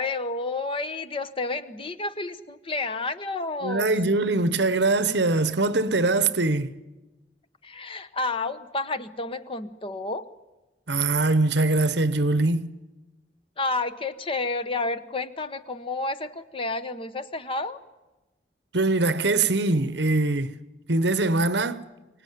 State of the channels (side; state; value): both; normal; correlation 0.26